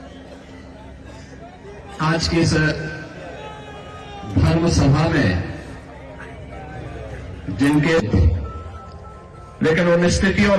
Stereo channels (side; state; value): both; identical; correlation 1.00